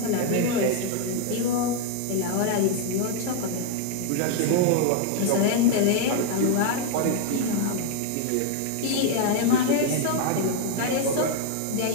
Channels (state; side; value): different; both; correlation 0.00